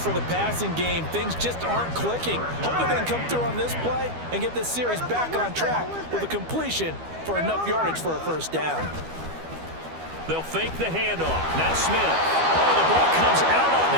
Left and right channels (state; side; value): late; left; 12 ms